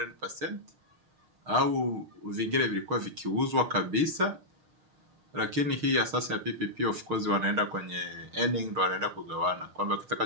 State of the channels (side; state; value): left; late; 6.5 ms